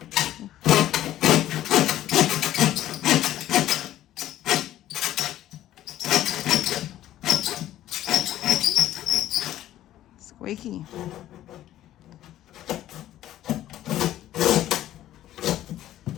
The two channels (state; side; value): quieter; right; 13.2 dB